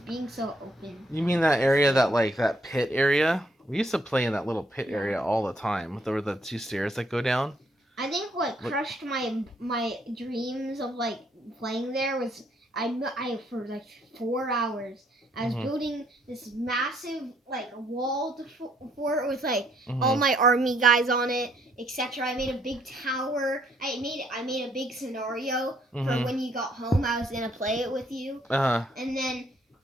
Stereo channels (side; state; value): both; normal; correlation 0.69